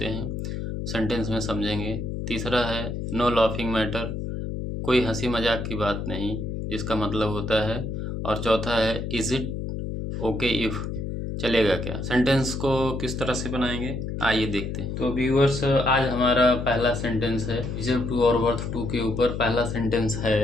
हैं सेंटेंस में समझेंगे। तीसरा है नो लाफिंग मैटर, कोई हंसी मजाक की बात नहीं, जिसका मतलब होता है। और चौथा है इज इट ओके इफ, चलेगा क्या। सेंटेंस को किस तरह से बनाएंगे आइए देखते हैं। तो व्यूअर्स, आज हमारा पहला सेंटेंस है डिजर्व टू और वर्थ टू के ऊपर। पहला सेंटेंस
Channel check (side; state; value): left; noise; hum, 4 dB below the sound